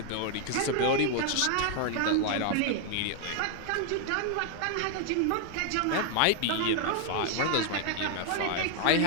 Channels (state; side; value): different; both; correlation 0.00